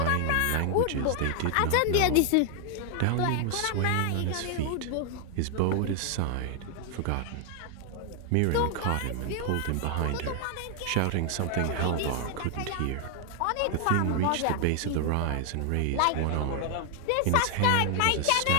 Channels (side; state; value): both; different; correlation 0.00